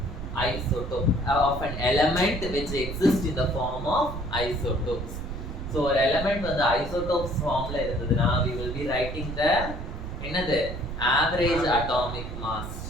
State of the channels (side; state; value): right; noise; rumble, 7 dB below the sound